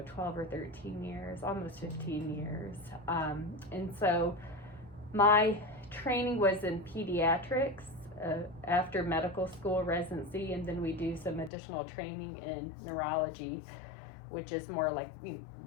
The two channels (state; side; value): drops out; right; at 11.5 s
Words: 12 or 13 years, almost 15 years. And so my training was in pediatrics after medical school residency, and then we do some additional training in neurology, which is more